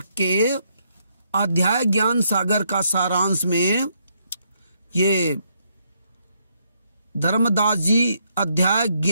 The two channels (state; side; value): inverted; both; correlation -0.74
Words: के अध्याय ज्ञान सागर का सारांश में ये धर्मदास जी अध्याय